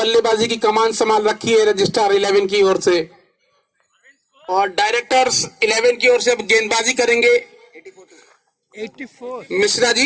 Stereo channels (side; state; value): both; identical; correlation 1.00